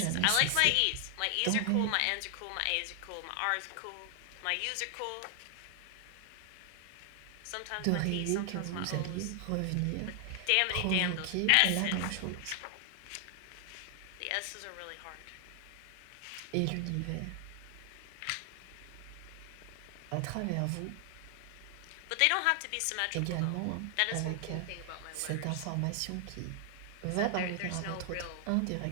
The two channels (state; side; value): different; both; correlation 0.00